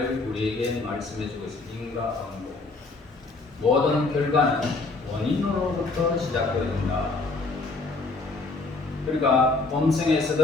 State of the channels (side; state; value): right; quieter; 3.6 dB